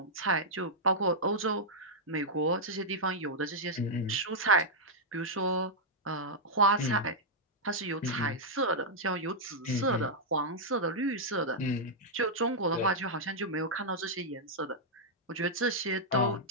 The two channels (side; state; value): both; normal; correlation -0.06